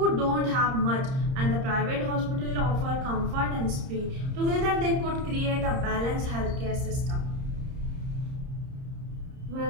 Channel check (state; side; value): late; left; 30 ms